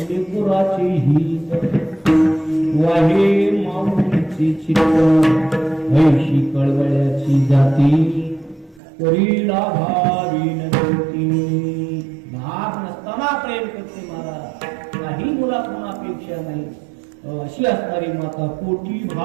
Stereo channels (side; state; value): left; drops out; at 8.8 s